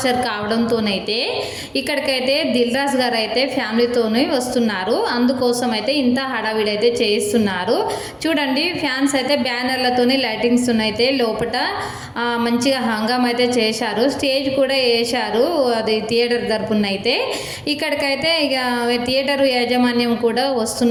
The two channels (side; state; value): both; identical; correlation 1.00